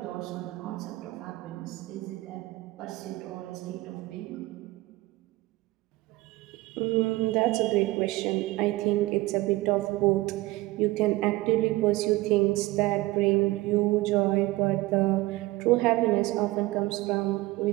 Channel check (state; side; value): quieter; left; 19.7 dB